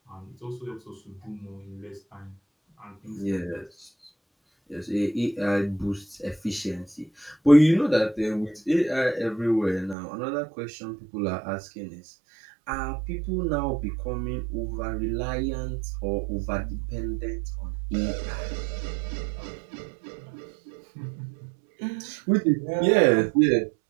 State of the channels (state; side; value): drops out; left; at 10.0 s